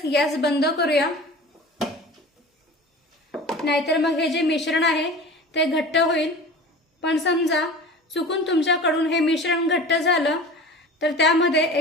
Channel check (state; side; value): normal; both; correlation 0.37